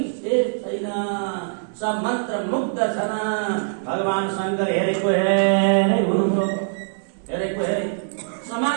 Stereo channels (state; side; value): silent; left; 64 dB below the other